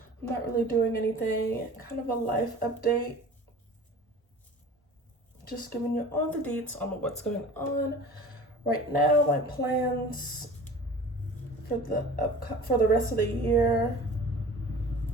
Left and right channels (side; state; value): both; normal; correlation 0.41